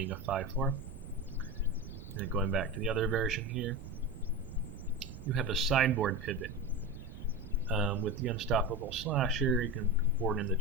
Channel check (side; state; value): right; noise; rumble, 12 dB below the sound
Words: a 5/4. And then going back to the other version here, you have a sideboard pivot. With the Unstoppable Slasher, you can board in the